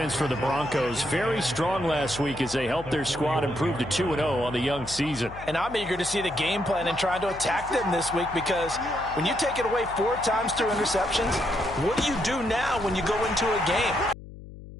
for the Broncos, very strong last week as they helped their squad improve to 2-0 on the young season. And I'm eager to see the game plan and trying to attack them this week, because when you take it away 4 times through interceptions, what do you do now when you go into a game?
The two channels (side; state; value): left; noise; hum, 15 dB below the sound